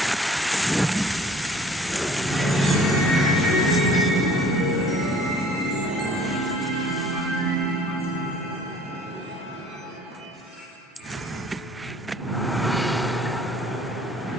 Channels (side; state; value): both; normal; correlation 0.51